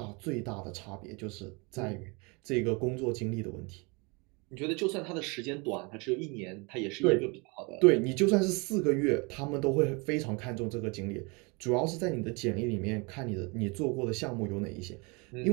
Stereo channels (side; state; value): left; quieter; 29.3 dB